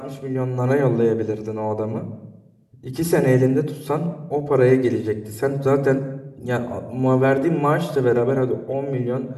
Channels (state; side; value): identical; both; correlation 1.00